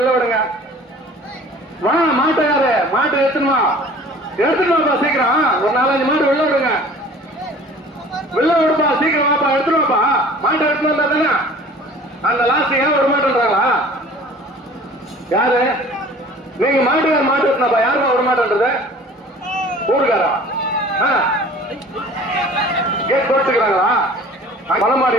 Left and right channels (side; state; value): both; normal; correlation 0.47